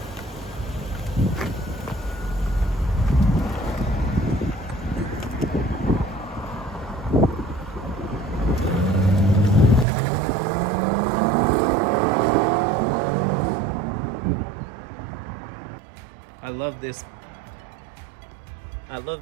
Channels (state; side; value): drops out; left; at 9.9 s